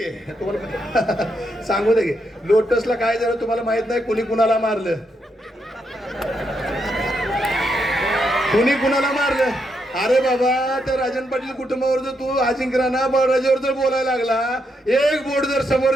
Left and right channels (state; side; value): normal; both; correlation 0.80